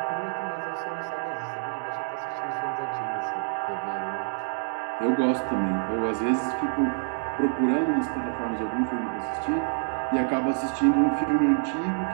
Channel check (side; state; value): left; silent; digital silence